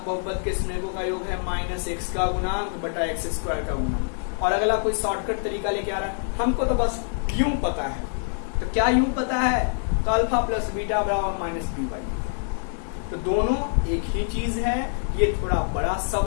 बहुपद के शून्यकों का योग है माइनस एक्स का गुणांक बटा एक्स स्क्वायर का गुणांक, और अगला कोई शॉर्टकट तरीका लेके आ रहा है, हमको तो बस यूं पता है, तो क्या यूं पता है, तो अल्फा प्लस बीटा बराबर माइनस बी बाई, तो दोनों एक ही चीज है, ये थोड़ा बड़ा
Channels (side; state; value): right; silent; digital silence